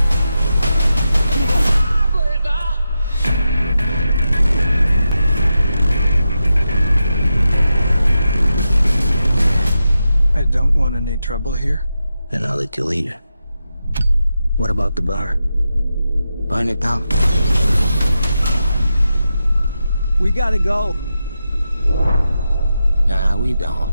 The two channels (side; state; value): both; inverted; correlation -0.89